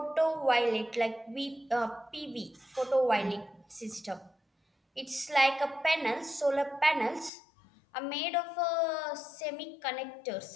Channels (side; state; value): right; drops out; at 7.3 s